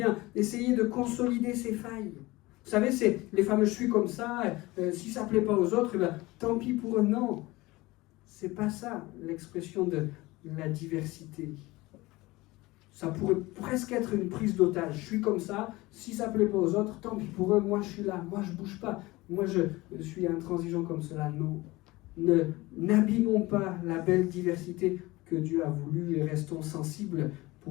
essayer de consolider ses failles. Vous savez, c'est les fameux « je suis comme ça », si ça ne plaît pas aux autres, tant pis pour eux. Non, c'est pas ça l'expression de la diversité. Ça pourrait presque être une prise d'otage. Je suis comme ça, si ça ne plaît pas aux autres, tant pis pour eux, moi je suis là, moi je ne bouge pas. Moi je suis intransigeant comme cela. Non. N'abîmons pas la belle diversité que Dieu a voulu et restons sensibles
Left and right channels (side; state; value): right; quieter; 20.6 dB